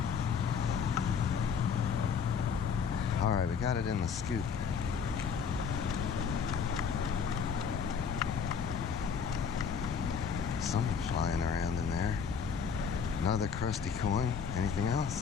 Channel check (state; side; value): quieter; right; 6.5 dB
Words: All right, we got it in the scoop. Something flying around in there. Another crusty coin. Anything